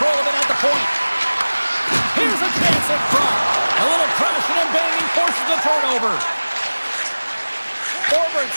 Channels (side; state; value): both; inverted; correlation -1.00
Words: of it at the point. Here's a chance in front. A little crashing and banging forces the turnover. Forwards